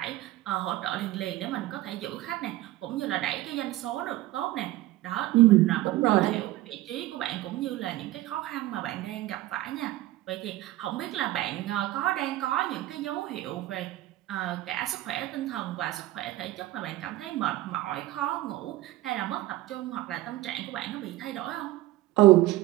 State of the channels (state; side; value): quieter; left; 16.4 dB